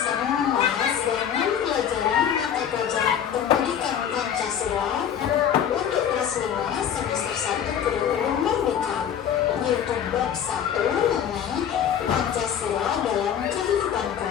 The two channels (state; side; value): quieter; right; 8.9 dB